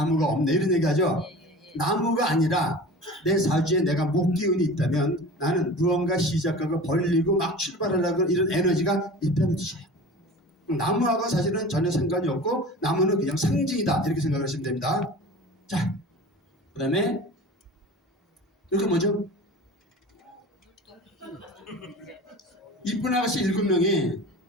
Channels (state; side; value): normal; both; correlation 0.37